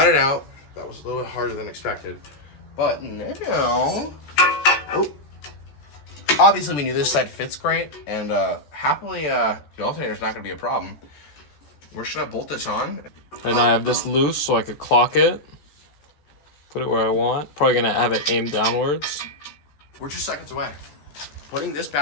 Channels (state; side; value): late; right; 14 ms